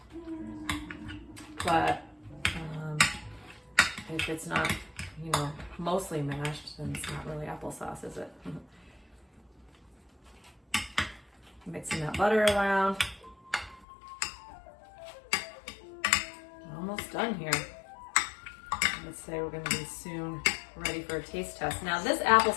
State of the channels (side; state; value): right; drops out; at 13.9 s